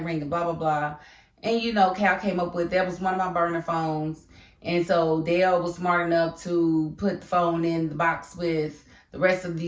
ringing, blah, blah, blah. And Cal came up with, that was one of my burner phones. And so Dale was smart enough to put the phone in the box with the rest of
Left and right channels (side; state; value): both; identical; correlation 1.00